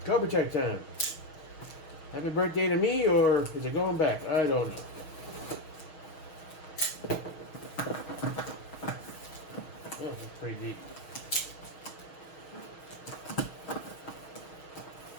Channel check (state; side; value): late; right; 6.3 ms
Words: Cobra check time. Happy birthday to me, or is it going back? I don't know. Oh, it's pretty deep.